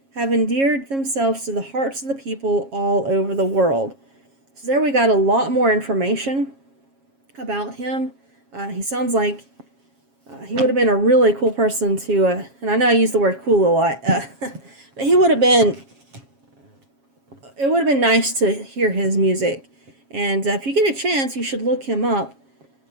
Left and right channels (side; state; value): left; late; 7.3 ms